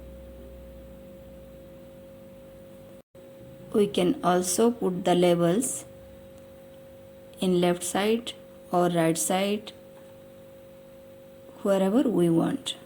We can also put the labels in left side or right side, wherever we want.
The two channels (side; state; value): both; identical; correlation 1.00